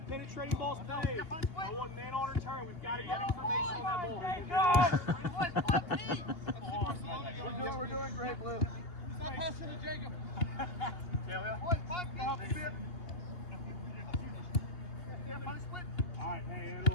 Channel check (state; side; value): late; right; 2.8 ms